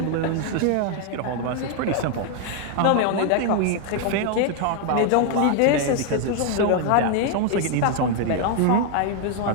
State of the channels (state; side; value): different; both; correlation 0.00